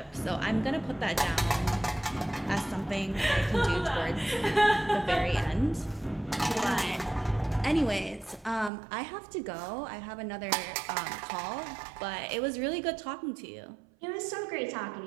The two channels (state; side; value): drops out; left; at 8.7 s